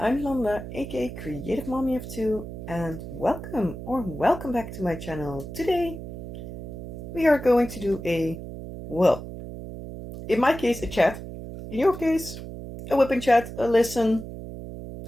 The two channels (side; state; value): right; noise; hum, 10 dB below the sound